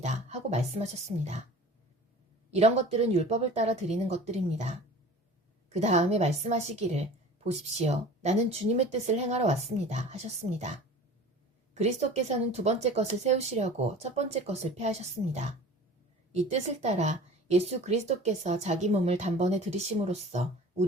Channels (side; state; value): both; normal; correlation 0.41